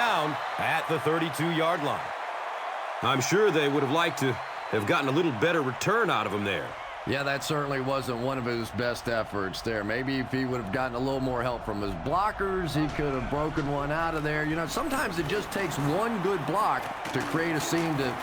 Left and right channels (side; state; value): both; identical; correlation 1.00